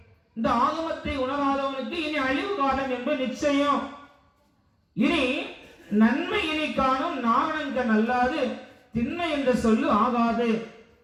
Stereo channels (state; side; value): identical; both; correlation 1.00